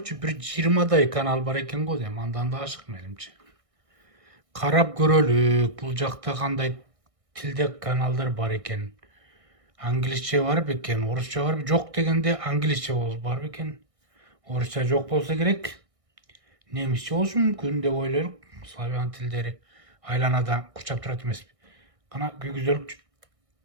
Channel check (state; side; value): late; left; 1.6 ms